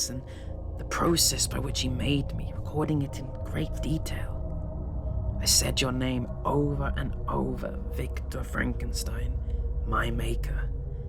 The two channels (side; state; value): both; identical; correlation 1.00